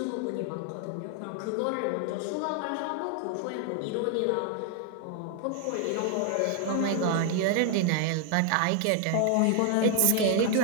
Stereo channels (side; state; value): both; different; correlation 0.00